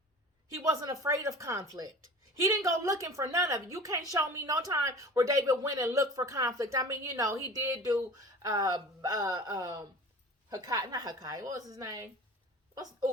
he wasn't afraid of conflict. He didn't go looking for none of it. You can't show me no time where David went and looked for conflict. I mean, he did do Hakai, not Hakai, what was his name?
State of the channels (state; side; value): normal; both; correlation 0.39